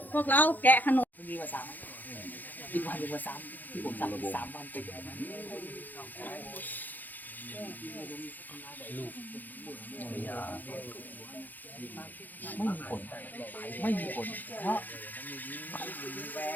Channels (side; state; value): right; late; 0.085 ms